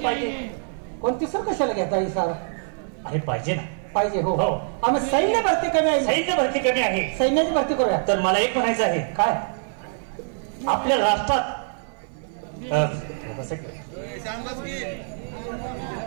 पाहिजे? कोणती सर कशाला घेता ही सर? अरे पाहिजे ना. पाहिजे. हो आम्ही सैन्य भरती कमी आहे. सैन्य भरती कमी आहे. सैन्याची भरती करूया. तर मला एक म्हणायचं आहे. काय? आपल्या राष्ट्रात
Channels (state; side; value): silent; left; 58 dB below the other